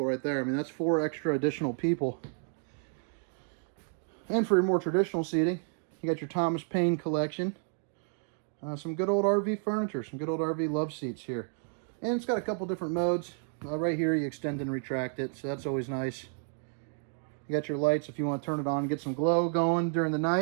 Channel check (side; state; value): left; silent; 56 dB below the other